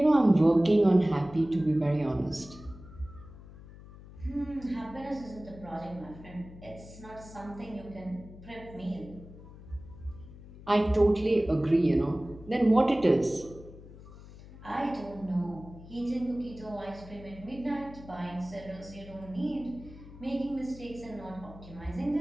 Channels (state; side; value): noise; left; hum, 17 dB below the sound